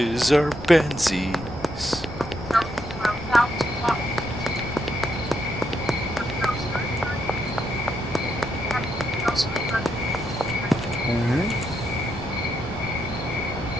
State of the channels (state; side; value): noise; left; rumble, 16 dB below the sound